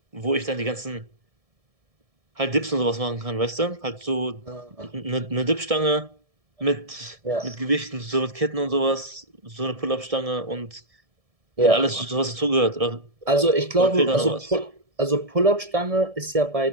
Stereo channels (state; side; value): late; left; 1.7 ms